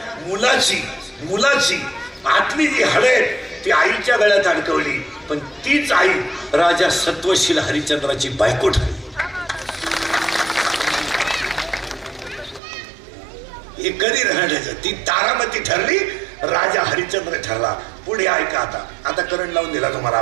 मुलाची आतली जी हळद ती आईच्या गळ्यात अडकवली. पण तीच आई राजा सत्वशील हरिश्चंद्राची बायको ठरली. हे कधी राहण्याचं ती तारामती ठरली. राजा हरिश्चंद्र ठरला. पुढे ऐका. आता करंट लावून दिला तुम्हाला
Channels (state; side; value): drops out; left; at 12.6 s